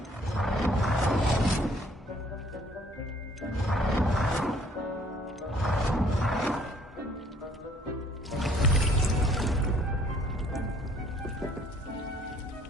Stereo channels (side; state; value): both; normal; correlation 0.60